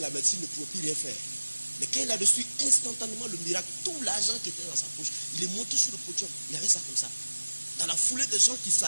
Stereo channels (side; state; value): both; inverted; correlation -1.00